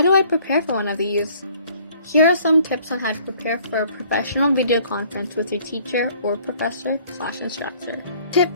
do I prepare for one of these? Here are some tips on how to prepare for a professional video conference with your teacher or professor/instructor.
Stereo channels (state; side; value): inverted; both; correlation -0.58